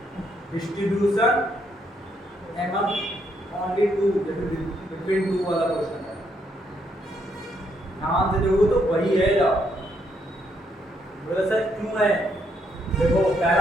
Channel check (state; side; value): normal; both; correlation 0.74